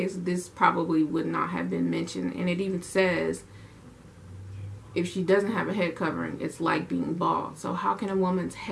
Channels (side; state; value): both; identical; correlation 1.00